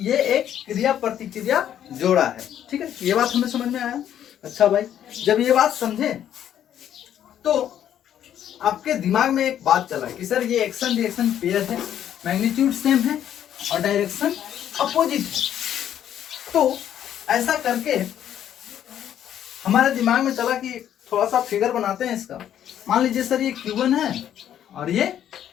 ये एक क्रिया प्रतिक्रिया जोड़ा है। ठीक है, ये बात हमें समझ में आया। अच्छा भाई, जब ये बात समझे तो आपके दिमाग में एक बात चला कि सर ये एक्शन रिएक्शन पेयर है, मैग्नीट्यूड सेम है और डायरेक्शन अपोजिट है। तो ऐसा करके हमारे दिमाग में चला कि थोड़ा सा फिगर बनाते हैं इसका। मान लीजिए सर ये Q1 है और ये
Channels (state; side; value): quieter; right; 10.4 dB